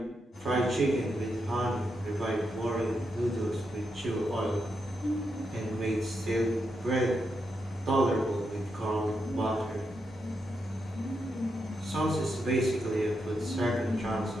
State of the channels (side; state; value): both; normal; correlation 0.83